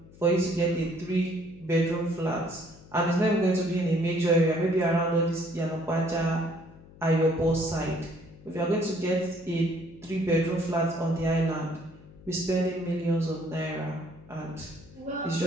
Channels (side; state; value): left; noise; hum, 22 dB below the sound